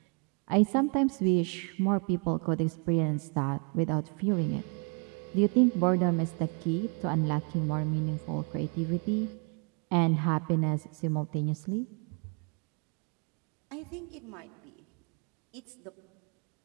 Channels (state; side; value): quieter; left; 36.9 dB